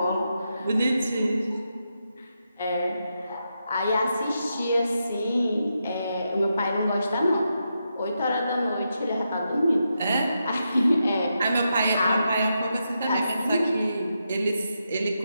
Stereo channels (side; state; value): both; inverted; correlation -0.85